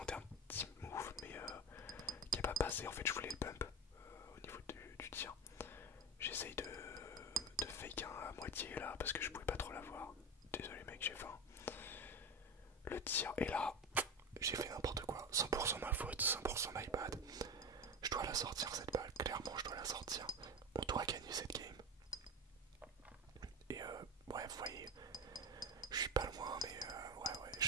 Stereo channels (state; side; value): normal; both; correlation 0.22